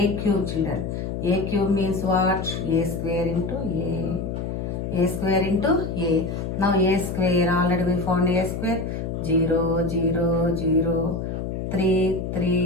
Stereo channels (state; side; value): noise; left; hum, 4 dB below the sound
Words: children. AQ means what? A square into A. A square into A. Now A square, already we found A square. 0 0 0 3